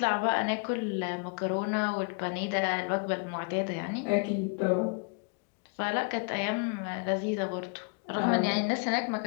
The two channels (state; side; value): quieter; right; 35.2 dB